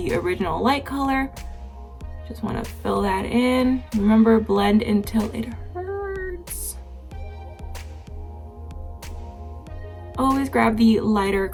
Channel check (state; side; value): identical; both; correlation 1.00